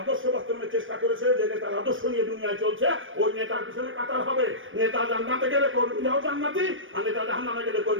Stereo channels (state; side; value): late; left; 0.57 ms